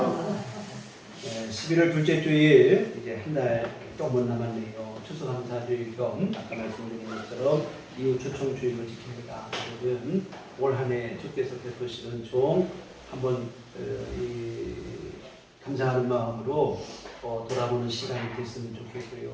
11월 둘째 주일 이제 한 달 조금 남았네요. 추수감사주일 겸 아까 말씀드린 것처럼 이후 초청주일을 지킵니다. 오늘은 올 한 해 주께서 베푸신 은총 한번 감사하는 마음으로 돌아보는 시간이 됐으면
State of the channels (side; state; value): both; identical; correlation 1.00